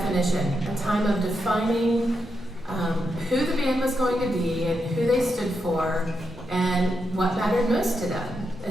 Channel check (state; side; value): normal; both; correlation 0.84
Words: a time of defining who the band was going to be and who they stood for and what mattered most to them.